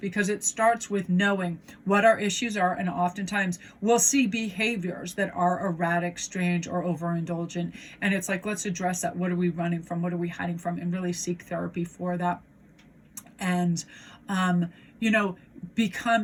it starts with knowing what our issues are, and oftentimes we'll see behaviors that are erratic, strange, or overindulgent, and it's like, let's address that. What are we running from? What are we hiding from? And really seek therapy for that. And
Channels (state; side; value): identical; both; correlation 1.00